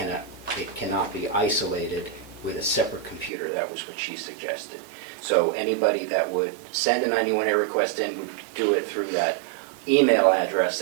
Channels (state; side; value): drops out; left; at 3.3 s